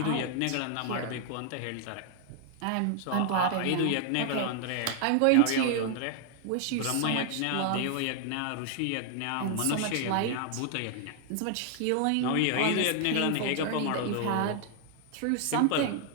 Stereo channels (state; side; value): different; both; correlation 0.00